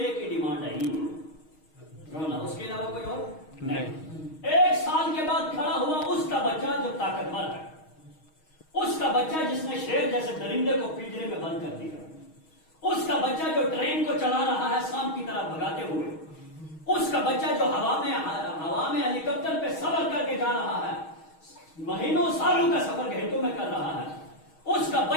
ہی ڈیمانڈ ہے ہی رونا, اس کے علاوہ کوئی اور نہیں. 1 سال کے بعد کھڑا ہوا اس کا بچہ جو طاقتور ہے, اس کا بچہ جس نے شیر جیسے درندے کو پنجرے میں بند کر دیا, اس کا بچہ جو ٹرین کو چلا رہا ہے شام کی طرح بھگاتے ہوئے, اس کا بچہ جو ہوا میں ہیلی کاپٹر پہ سفر کر کے جا رہا ہے, مہینوں سالوں کا سفر گھنٹوں میں کر رہا ہے, اس کا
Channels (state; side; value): late; right; 6.4 ms